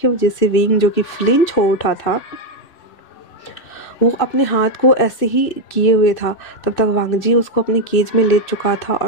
वजह से विंग जो कि फ्लिंच हो उठा था, वो अपने हाथ को ऐसे ही किए हुए था। तब तक वांग जी उसको अपने केज में ले चुका था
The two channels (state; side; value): late; right; 2.6 ms